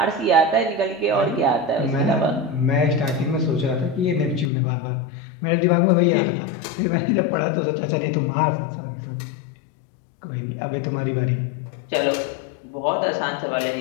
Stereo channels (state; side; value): drops out; right; at 4.5 s